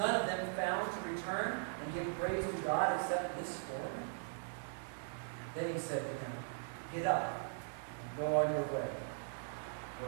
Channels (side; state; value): left; silent; digital silence